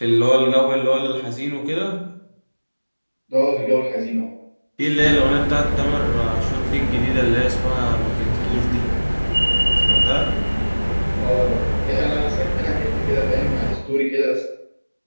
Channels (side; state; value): both; inverted; correlation -1.00